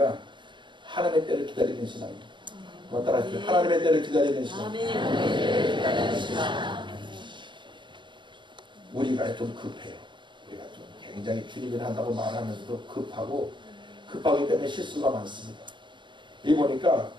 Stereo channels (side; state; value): left; late; 0.23 ms